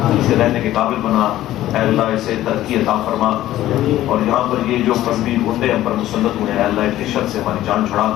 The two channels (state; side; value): quieter; right; 14.1 dB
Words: اسے رہنے کے قابل بنا. اے اللہ اسے ترقی عطا فرما. اور یہاں پر یہ جو مذہبی گنڈے ہم پر مسلط ہوئے ہیں، اے اللہ ان کی شر سے ہماری جان چھڑا.